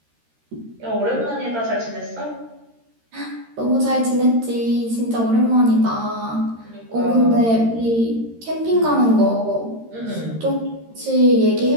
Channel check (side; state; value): left; late; 13 ms